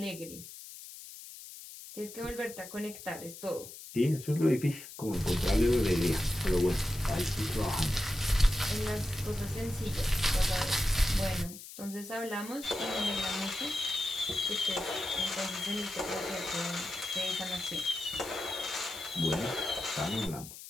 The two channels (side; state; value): left; noise; hiss, 14 dB below the sound